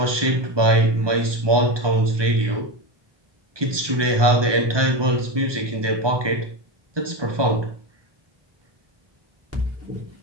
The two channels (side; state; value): left; late; 1.2 ms